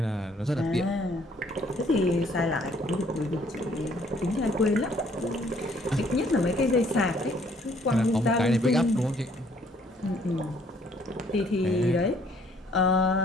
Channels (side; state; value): both; normal; correlation 0.63